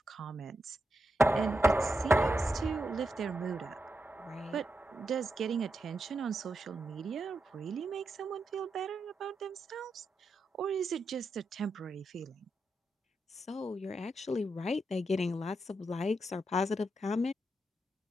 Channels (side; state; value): both; normal; correlation 0.85